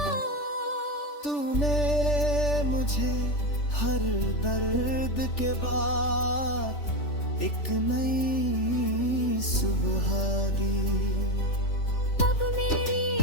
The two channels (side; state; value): right; late; 3.4 ms